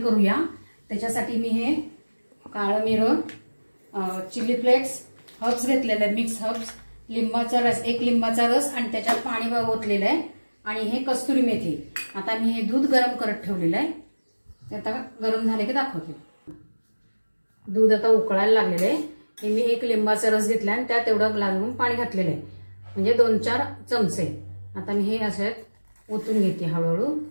करूया। त्याच्यासाठी मी हे काळं मिरं, चिली फ्लेक्स, हर्ब्स घेतलेले आहेत, मिक्स हर्ब्स, लिंबाचा रस, एक लिंबाचा रस आणि त्याच्यात पाणी ओतलेलं आहे आणि हे कस्तुरी मेथी। आता मी हे दूध गरम करत ठेवलेलं आहे। आता गरम झाले की दाखवते। दूध आता उकळायला लागलेलं आहे। हे मी एक लिंबाचा रस घेतला आणि त्यात एवढं ग्लासभरून पाणी घातलेलं आहे, म्हणजे 2-4 चमचे। आता मी हे असं ओतून घेते हळूहळू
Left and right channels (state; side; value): inverted; both; correlation -1.00